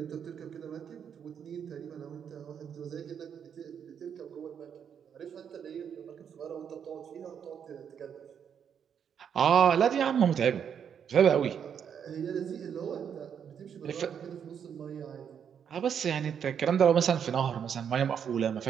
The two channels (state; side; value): quieter; left; 7.9 dB